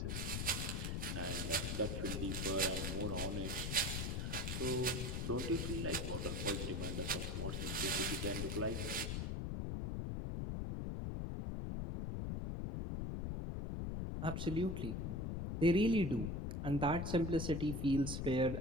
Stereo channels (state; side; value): noise; left; rumble, 2 dB below the sound